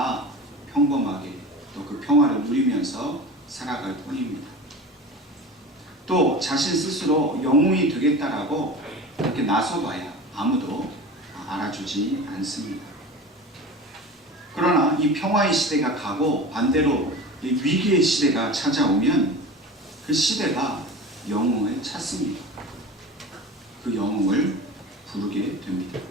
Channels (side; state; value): both; normal; correlation 0.34